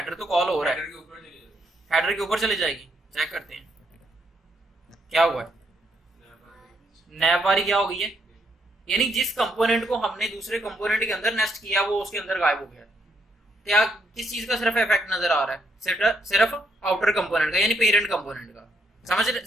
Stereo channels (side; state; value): both; normal; correlation 0.74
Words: तो कॉल हो रहा है, हेडर के ऊपर चले जाएगी। चेक करते हैं क्या हुआ है, नैव बार क्या हो गई है, यानी जिस कंपोनेंट को हमने दूसरे कंपोनेंट के अंदर नेस्ट किया वो उसके अंदर गायब हो गया। क्या किस चीज का सिर्फ इफेक्ट नजर आ रहा है? सिर्फ आउटर कंपोनेंट का, यानी पेरेंट कंपोनेंट का। समझ